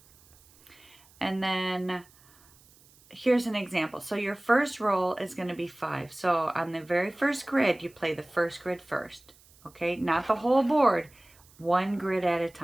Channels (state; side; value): noise; right; hiss, 28 dB below the sound